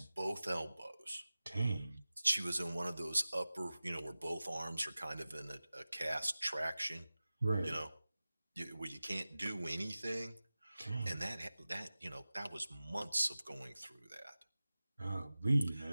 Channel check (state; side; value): inverted; both; correlation -0.96